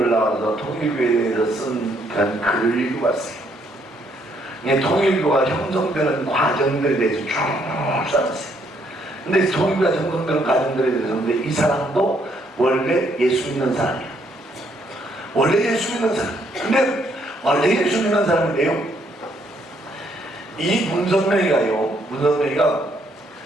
나와서 통일교회에 대해서 쓴 그런 글을 읽어봤어요. 통일교가 형성되는 과정들에 대해서 쭉 써놨어요. 근데 통일교가 형성되는 과정들에 대해서, 근데 이 사람도 원래 예수 믿는 사람이야. 원래 예수 믿는 사람. 근데 원래 예수 믿는 사람인데요, 이 문선명이가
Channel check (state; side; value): normal; both; correlation 0.70